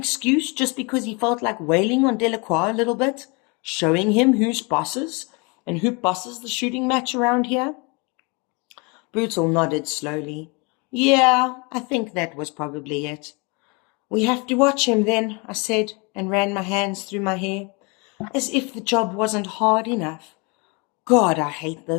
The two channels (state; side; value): quieter; right; 30.4 dB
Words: just because he felt like wailing on Delacroix a little bit, showing him who's bosses and who bosses the shooting match around here?" Brutal nodded slowly. "Yeah, I think that was probably it." "We have to watch him then," I said, and ran my hands through my hair, as if the job wasn't hard enough. God, I hate